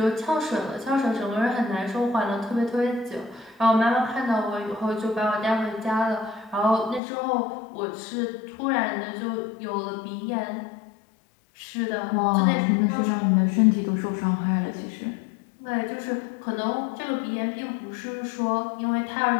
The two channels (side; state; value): right; drops out; at 7.0 s